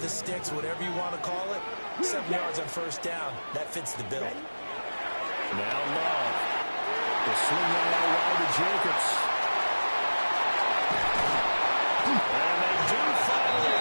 the sticks, whatever you want to call it, 7 yards on 1st down, that fits the bill. Now Love. The swing on out wide to Jacobs. And they do finally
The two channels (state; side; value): inverted; both; correlation -1.00